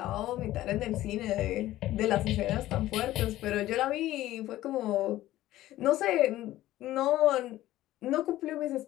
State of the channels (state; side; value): quieter; right; 15.1 dB